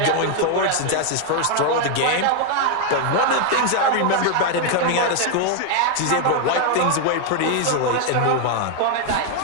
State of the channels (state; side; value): different; both; correlation 0.00